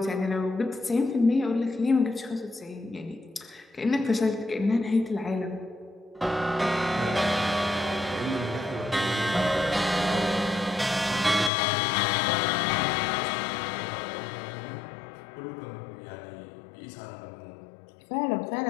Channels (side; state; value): right; drops out; at 11.5 s